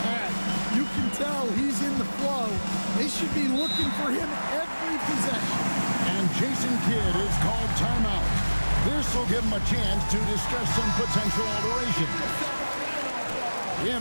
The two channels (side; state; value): both; inverted; correlation -1.00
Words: had. You can tell he's in the flow. They should be looking for him every possession. And Jason Kidd is called timeout. This will give him a chance to discuss some potential alteration. We